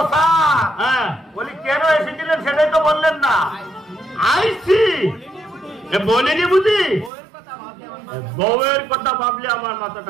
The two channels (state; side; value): drops out; left; at 7.1 s